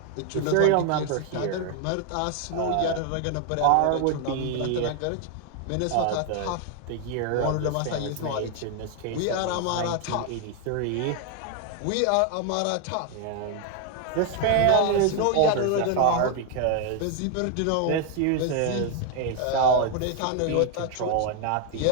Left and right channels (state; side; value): different; both; correlation 0.01